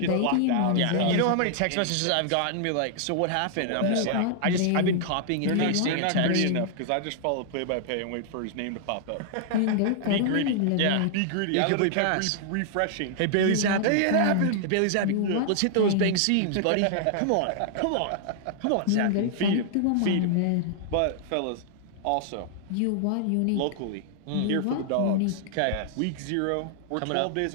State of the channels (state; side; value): different; both; correlation -0.01